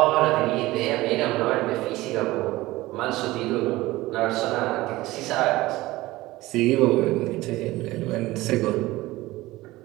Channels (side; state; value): left; quieter; 18.6 dB